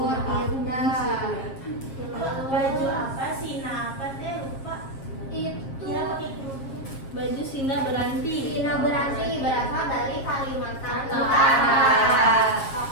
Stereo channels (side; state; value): right; late; 7.5 ms